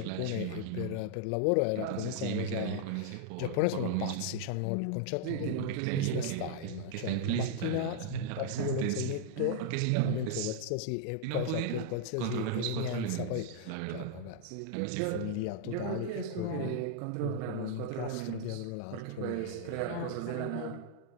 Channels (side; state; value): both; different; correlation -0.01